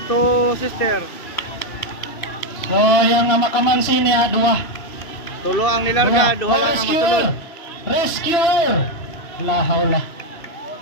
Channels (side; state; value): right; late; 2.9 ms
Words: Sister. So, yung makamansi niya, dua. Tulo ang nilarga, duha lang ang masulod. Rescuer! La hawla.